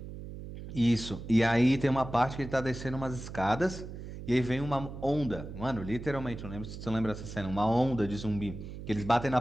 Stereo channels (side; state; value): right; noise; hum, 10 dB below the sound